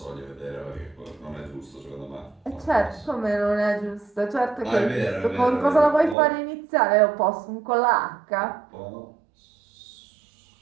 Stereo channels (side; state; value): left; drops out; at 6.2 s